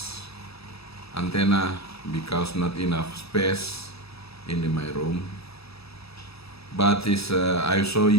antenna because not enough space in my room, but I show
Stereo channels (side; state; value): right; late; 0.77 ms